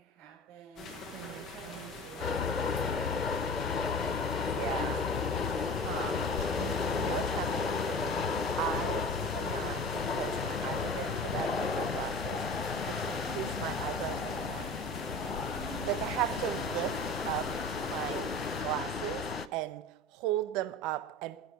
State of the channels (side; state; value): both; normal; correlation 0.36